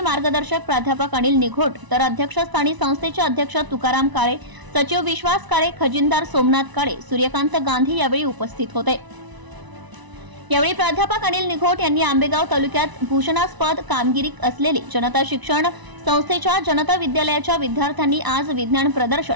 प्राध्यापक अनिल निघोट, तर अध्यक्षस्थानी संस्थेचे अध्यक्ष तुकाराम काळे, सचिव विश्वास काळे, खजिनदार सोमनाथ काळे, सूर्यकांत गांधी यावेळी उपस्थित होते। यावेळी प्राध्यापक अनिल निघोट यांनी आंबेगाव तालुक्यात भूषणास्पद कामगिरी असलेली जनता शिक्षण संस्थेच्या जनता विद्यालयाच्या विद्यार्थ्यांनी आज विज्ञान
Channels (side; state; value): left; late; 1.0 ms